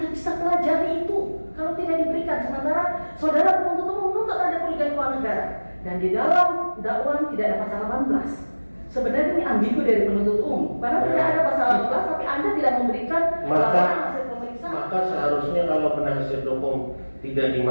bisa pelajari itu kalau tidak diberikan? Sementara saudara penuntut umum menuntut ada kerugian keuangan negara. Dan di dalam dakwaan tidak ada pasal 18. Sebenarnya ini ambigu dari penuntut umum. Karena tidak ada pasal 18 tapi Anda tidak memberikan laporan hasil pemeriksaan. Maka seharusnya kalau penasihat hukum tidak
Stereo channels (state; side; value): inverted; both; correlation -1.00